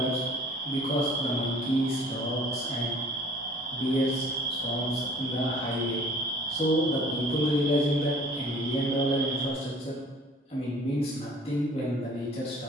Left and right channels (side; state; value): both; normal; correlation 0.51